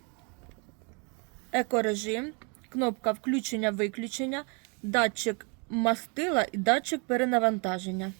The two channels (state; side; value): quieter; left; 34.1 dB